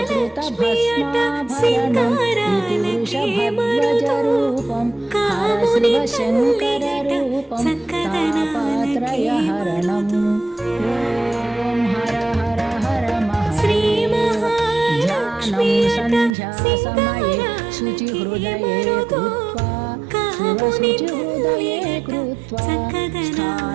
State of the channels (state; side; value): drops out; left; at 16.4 s